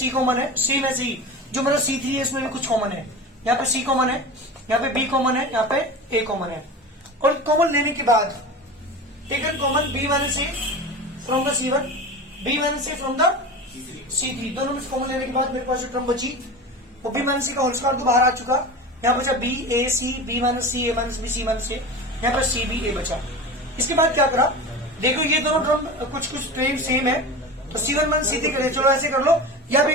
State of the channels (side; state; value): both; normal; correlation 0.30